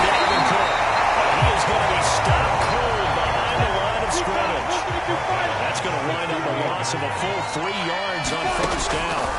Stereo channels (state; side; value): identical; both; correlation 1.00